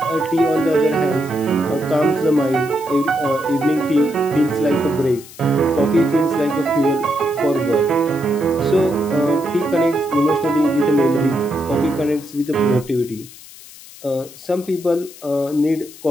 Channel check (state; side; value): noise; left; hiss, 19 dB below the sound